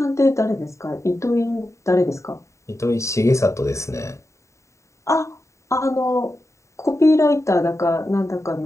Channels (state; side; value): late; right; 0.14 ms